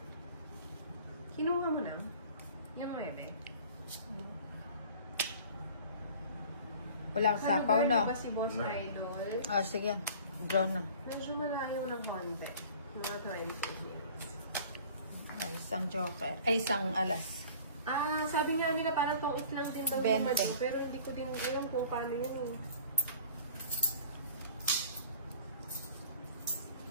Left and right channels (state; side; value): inverted; both; correlation -0.46